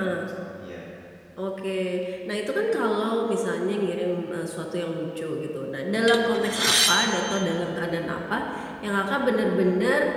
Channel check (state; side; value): identical; both; correlation 1.00